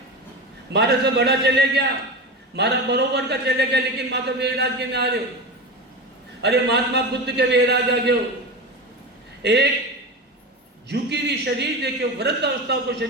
मारे से बड़ा चले गया मारा बरोबर का चले गया लेकिन माता वैराग्य में आ रहे हो अरे महात्मा बुद्ध के वैराग्य आ गए एक झुकी हुई शरीर देखो वृद्ध अवस्था को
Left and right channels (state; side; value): normal; both; correlation 0.24